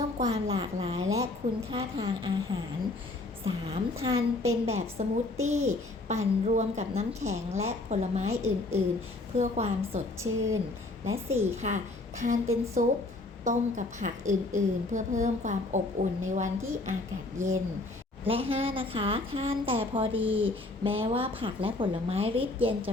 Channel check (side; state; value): right; quieter; 3.0 dB